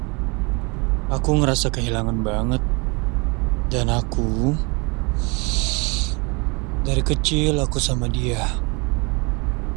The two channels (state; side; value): quieter; left; 29.9 dB